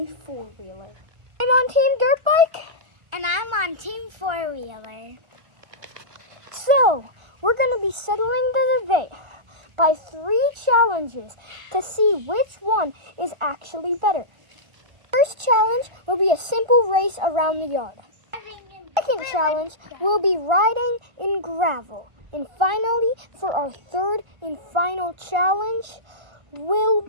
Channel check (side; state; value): left; late; 1.3 ms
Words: four-wheeler? I'm on Team Dirt Bike. And I'm on Team Four-Wheeler. So, we're going to be settling the debate by 3 challenges to see which one is actually better. First challenge will be a simple race around the yard. Second challenge will be riding in gravel. And finally, for our third and final challenge, will